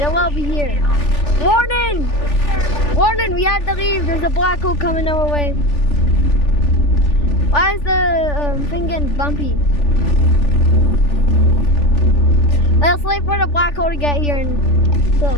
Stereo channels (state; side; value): late; right; 3.4 ms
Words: it will be here. Warning! Warning, we have to leave. There's a black hole coming our way. Why is the thing getting bumpy? Let's wait for the black hole to get here and so